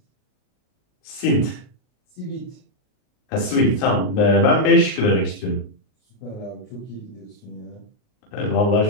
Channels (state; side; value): late; right; 39 ms